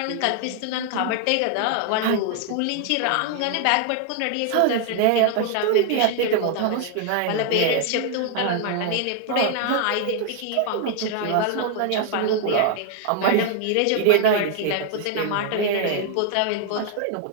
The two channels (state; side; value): different; both; correlation 0.00